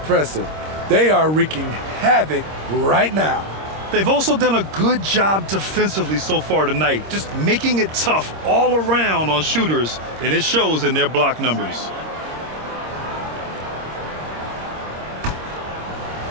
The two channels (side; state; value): left; late; 26 ms